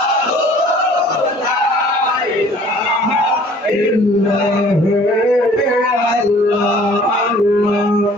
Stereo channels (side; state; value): both; normal; correlation 0.53